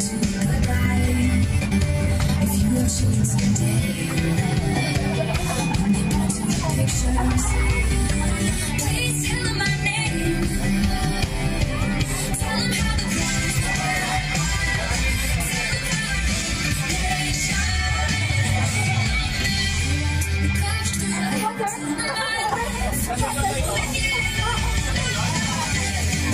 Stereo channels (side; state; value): both; identical; correlation 1.00